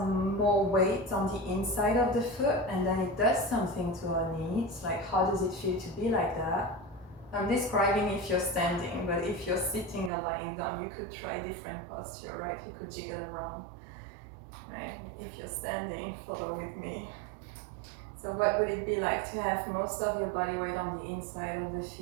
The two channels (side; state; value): left; drops out; at 10.1 s